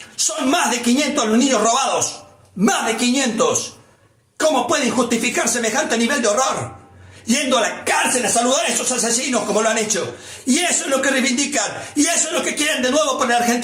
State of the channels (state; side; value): identical; both; correlation 1.00